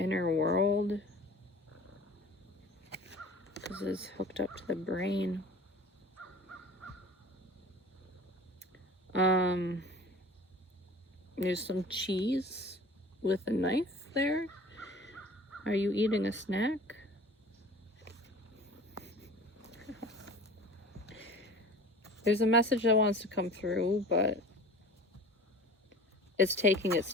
world. This is hooked up to the brain. There's some cheese with a knife there. Are you eating a snack? There's a message that wants to come through, but it's taking its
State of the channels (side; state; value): both; normal; correlation 0.41